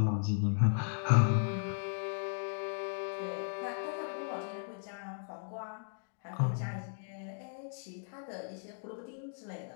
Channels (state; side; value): silent; right; digital silence